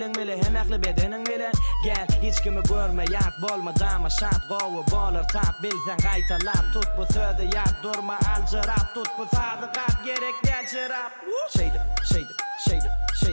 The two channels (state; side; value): inverted; both; correlation -1.00